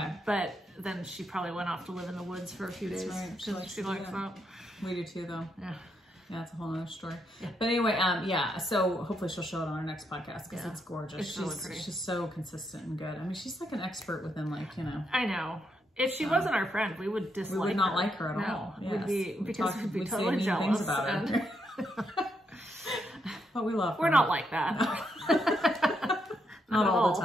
But then she probably went off to live in the woods for a few days. That's right. She likes that. We do too, though. Yeah. Yeah, it's a whole other story. Yeah. But anyway, so hopefully she'll show it on our next podcast because it's gorgeous. It's really pretty. She's so consistent and good. I mean, she's like an expert within I know. If she wasn't our friend, we would dislike her. We would not like her at all. Yes. We'd be totally jealous. Things about her. But we love her. We're not like that. Not all the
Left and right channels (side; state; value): both; normal; correlation 0.79